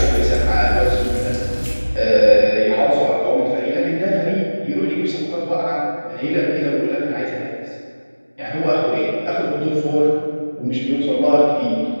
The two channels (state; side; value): inverted; both; correlation -1.00